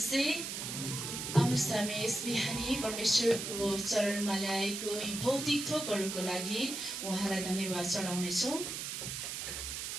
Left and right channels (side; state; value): right; noise; hiss, 5 dB below the sound